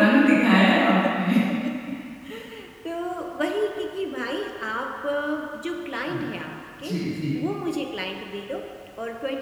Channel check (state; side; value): identical; both; correlation 1.00